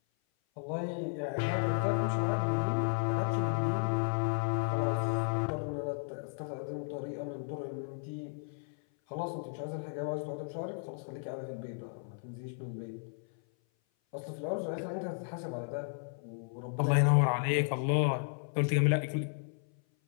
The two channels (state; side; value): silent; right; 55 dB below the other